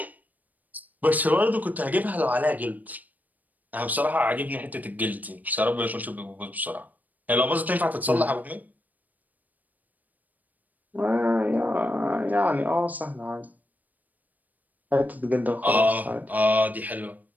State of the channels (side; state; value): left; late; 0.081 ms